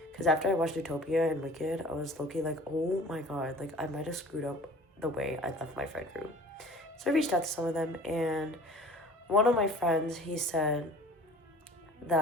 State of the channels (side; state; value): both; normal; correlation 0.46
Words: Because after I watched Utopia and Wicked, I was low-key like, oh my god, like, I might have screwed up the way I left my friend group. So I reached out to some of them, and one of my friends, he said